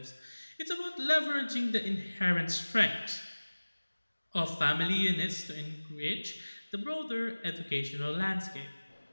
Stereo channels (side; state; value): both; inverted; correlation -1.00